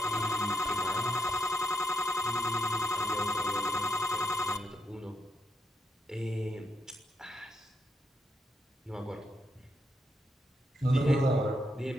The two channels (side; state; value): both; normal; correlation 0.79